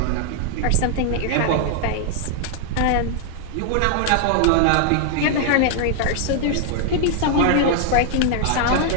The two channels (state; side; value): different; both; correlation 0.00